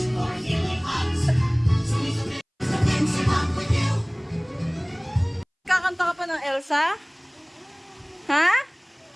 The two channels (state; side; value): identical; both; correlation 1.00